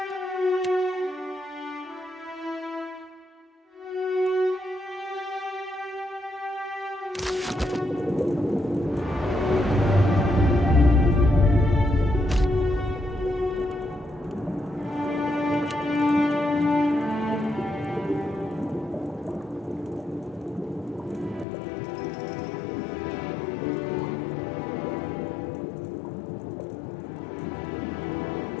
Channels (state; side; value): drops out; right; at 21.5 s